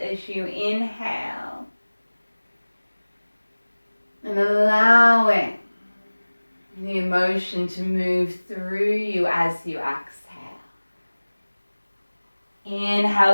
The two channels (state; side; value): inverted; both; correlation -1.00